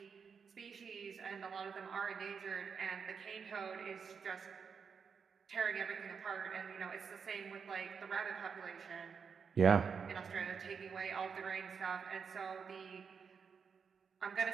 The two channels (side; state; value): left; quieter; 6.2 dB